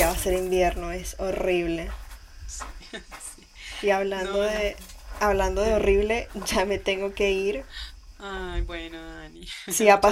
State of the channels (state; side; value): identical; both; correlation 1.00